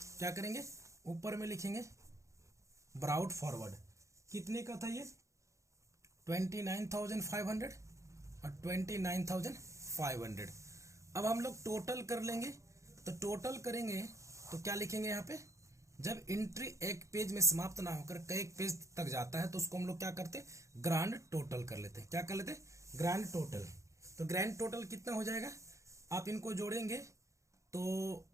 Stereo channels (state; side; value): late; left; 0.15 ms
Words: क्या करेंगे, ऊपर में लिखेंगे ब्राउट फॉरवर्ड। कितने का था ये, 29,500 और 29,500। अब हम लोग टोटल कर लेंगे, तो टोटल करेंगे तो क्या लिखेंगे यहाँ पे, जब एंट्री एक पेज में समाप्त ना होकर कई पेज तक जाता है तो उसको हम लोग क्या करते, ग्रांड टोटल कर लेते, क्या कर लेते, ग्रांड टोटल। तो ग्रैंड टोटल कितना हो जाएगा, आप इनको जोड़ेंगे तो